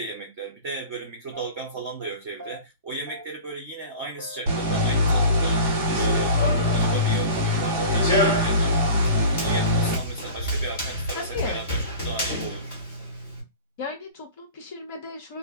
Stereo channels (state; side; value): inverted; both; correlation -0.38